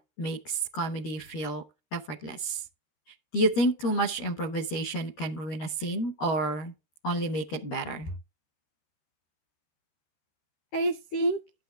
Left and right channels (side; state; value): right; late; 13 ms